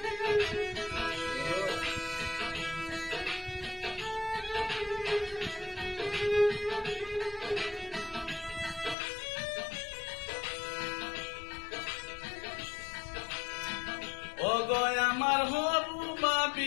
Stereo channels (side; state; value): right; drops out; at 9.0 s